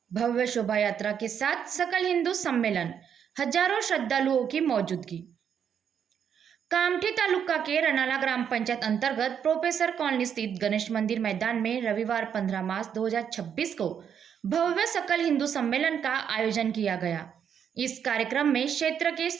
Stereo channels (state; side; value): quieter; left; 8.1 dB